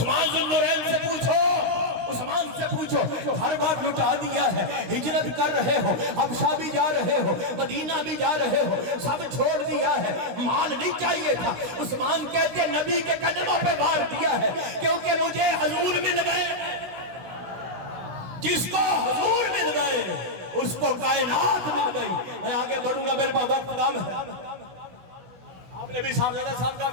ذوالنورین سے پوچھو، عثمان سے پوچھو، ہر بات لٹا دیا ہے، ہجرت کر رہے ہو، حبشہ بھی جا رہے ہو، مدینہ بھی جا رہے ہو، سب چھوڑ دیا ہے، مال نہیں چاہیے تھا۔ عثمان کہتے ہیں نبی کے قدموں پہ بار دیا ہے کیونکہ مجھے حضور مل گئے۔ جس کو حضور مل گئے اس کو کائنات مل گئی۔ میں آگے بڑھوں گا، میرے پاس وقت کم ہے۔ آپ نے بھی صاحبزادہ صاحب کا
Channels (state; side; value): late; left; 16 ms